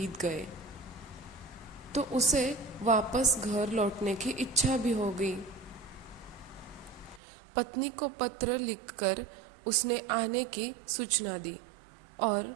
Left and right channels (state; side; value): drops out; left; at 7.2 s